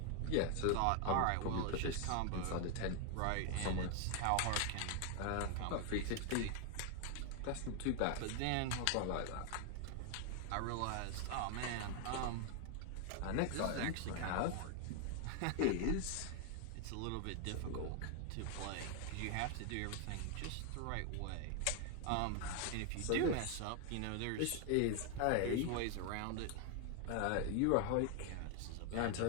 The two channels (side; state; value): both; different; correlation 0.00